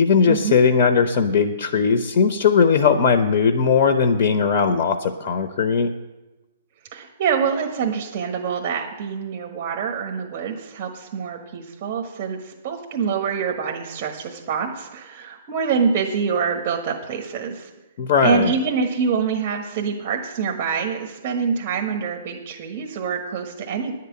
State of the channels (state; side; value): inverted; both; correlation -0.44